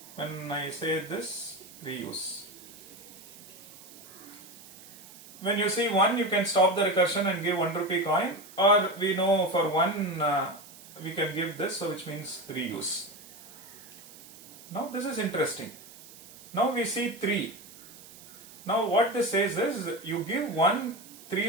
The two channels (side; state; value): right; noise; hiss, 19 dB below the sound